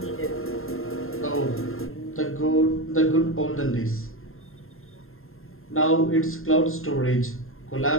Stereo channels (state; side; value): late; right; 0.61 ms